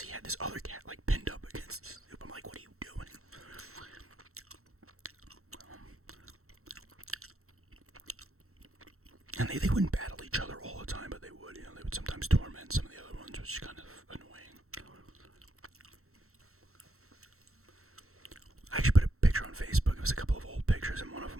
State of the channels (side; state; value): left; late; 0.63 ms